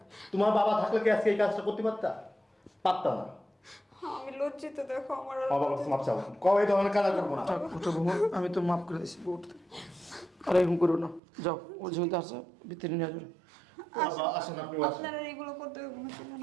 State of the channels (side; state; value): left; drops out; at 11.2 s